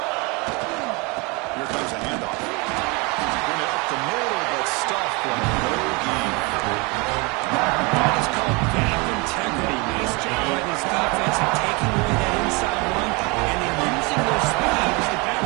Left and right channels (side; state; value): left; quieter; 28.3 dB